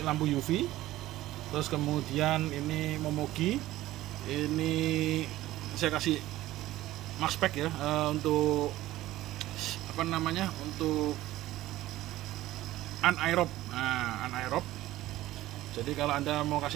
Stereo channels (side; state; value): left; quieter; 15.8 dB